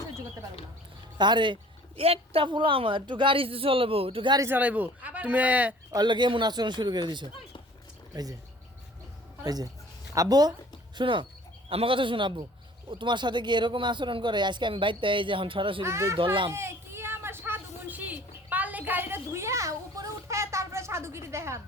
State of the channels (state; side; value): normal; both; correlation 0.50